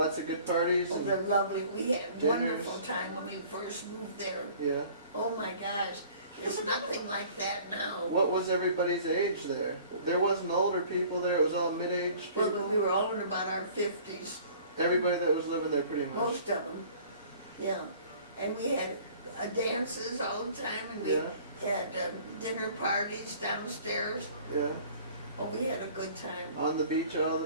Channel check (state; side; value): inverted; both; correlation -0.50